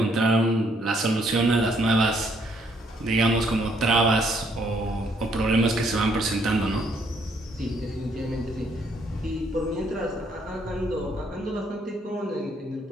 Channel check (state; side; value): normal; both; correlation 0.69